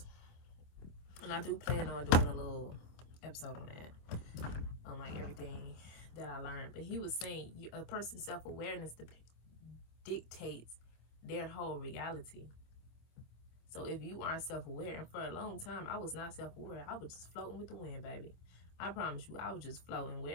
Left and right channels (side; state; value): right; late; 25 ms